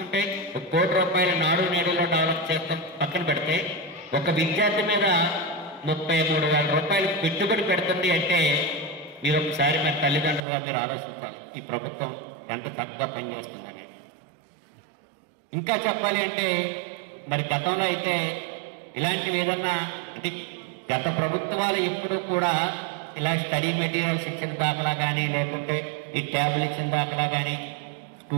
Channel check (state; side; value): drops out; left; at 10.4 s